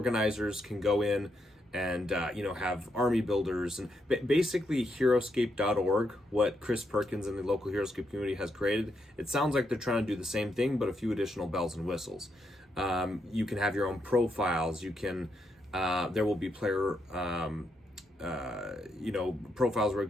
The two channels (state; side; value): normal; both; correlation 0.80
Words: can go in and have army builders, and basically Heroscape.org, what Chris Perkins and the local Heroscape community has created. It sounds like they're trying to do the same thing, but a few additional bells and whistles. You can have your own profiles. You can there will be player profiles where